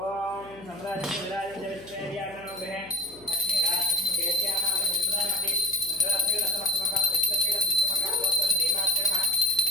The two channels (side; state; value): left; noise; hum, 23 dB below the sound